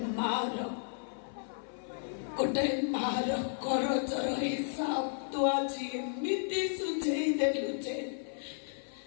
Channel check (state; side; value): silent; right; 55 dB below the other